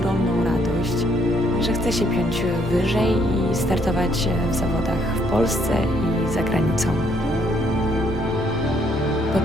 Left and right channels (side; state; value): both; normal; correlation 0.69